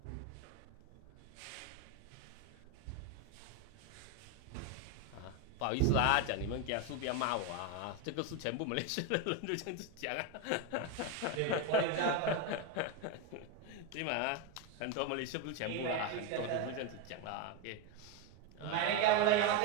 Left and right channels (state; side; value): different; both; correlation 0.03